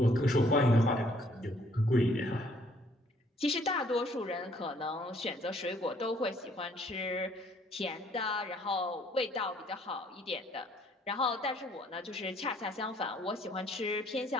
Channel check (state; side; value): normal; both; correlation 0.63